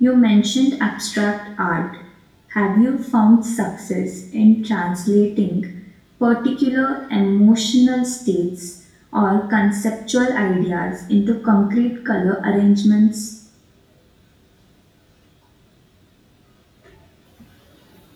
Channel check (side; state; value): both; identical; correlation 1.00